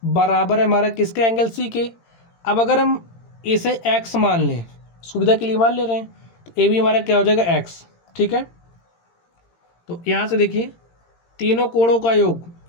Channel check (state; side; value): late; right; 18 ms